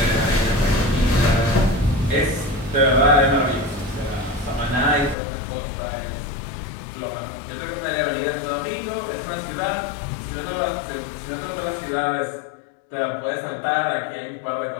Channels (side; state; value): right; drops out; at 5.2 s